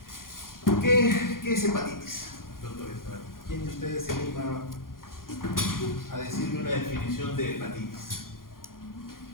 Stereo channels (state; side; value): late; right; 0.91 ms